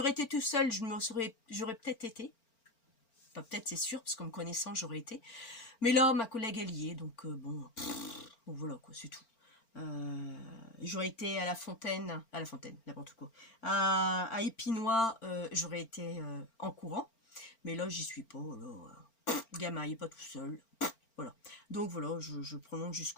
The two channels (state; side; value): late; right; 4.4 ms